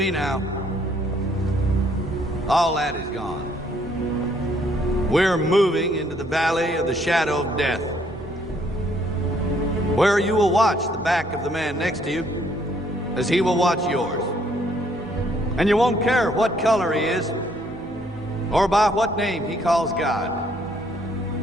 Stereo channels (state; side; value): normal; both; correlation 0.66